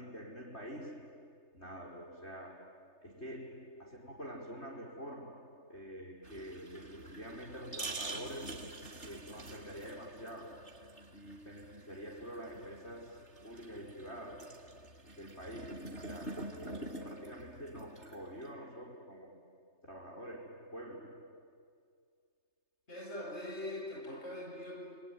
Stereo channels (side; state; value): right; late; 3.3 ms